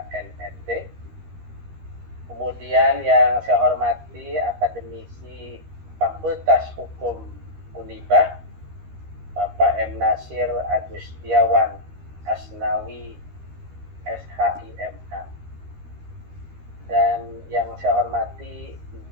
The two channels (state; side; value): late; left; 13 ms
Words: Kemudian yang saya hormati akademisi Fakultas Hukum Unibah, Bapak M. Nasir Agustiawan Asnawi SHIMH. Dan yang saya hormati